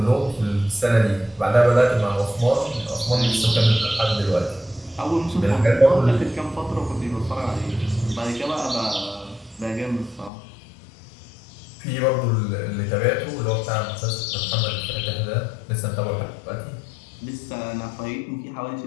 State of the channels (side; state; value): right; drops out; at 10.3 s